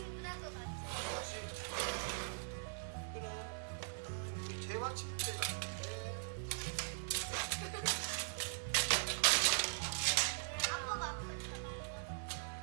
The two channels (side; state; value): left; silent; digital silence